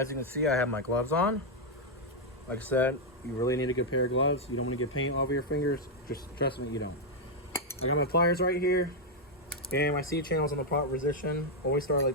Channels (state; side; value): normal; both; correlation -0.01